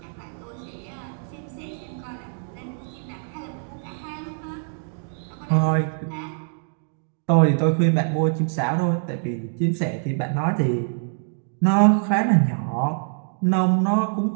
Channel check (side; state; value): left; silent; digital silence